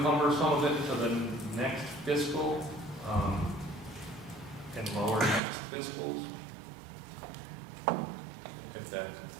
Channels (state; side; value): drops out; left; at 5.4 s